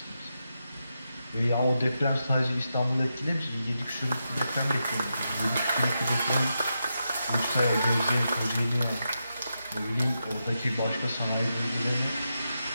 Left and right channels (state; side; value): inverted; both; correlation -0.87